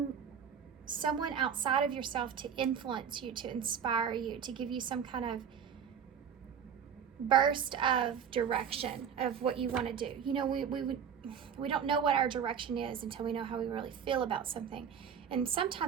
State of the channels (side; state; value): left; quieter; 7.7 dB